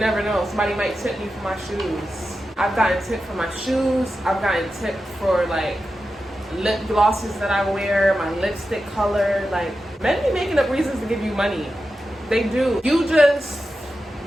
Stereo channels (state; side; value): normal; both; correlation 0.91